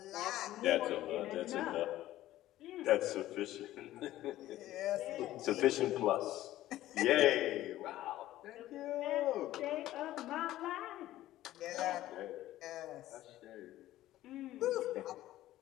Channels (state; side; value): quieter; right; 14.7 dB